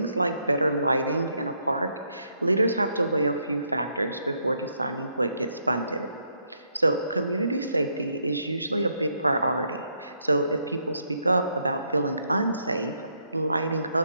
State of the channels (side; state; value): both; inverted; correlation -0.75